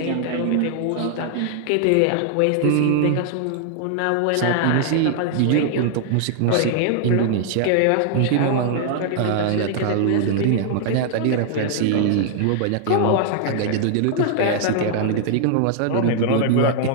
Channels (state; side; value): different; both; correlation 0.00